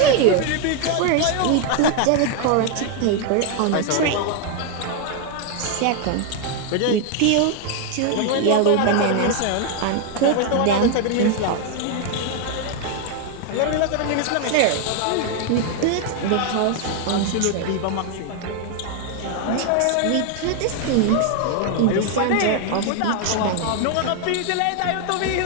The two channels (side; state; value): both; different; correlation 0.01